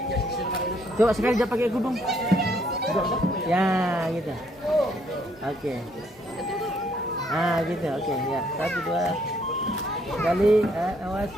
Coba sekali dia pakai kudung. Ya, gitu. Oke. Gitu. Oke, ya. 1, 2. Sekali. Awas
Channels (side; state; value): both; normal; correlation 0.68